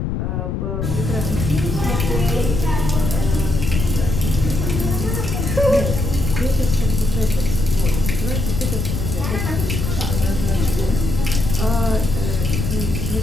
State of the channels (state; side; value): noise; left; rumble, 2 dB below the sound